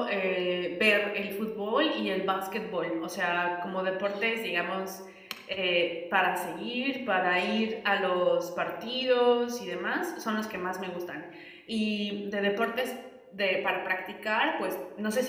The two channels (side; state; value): both; identical; correlation 1.00